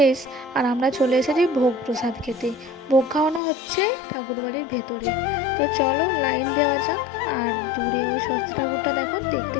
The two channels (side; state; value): right; drops out; at 3.4 s